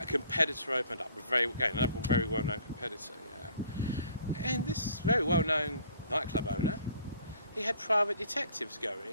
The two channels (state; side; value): inverted; both; correlation -0.56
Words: competitor opened up, another very well-known competitor, And this very well-known nightclub owner, he had private detectives go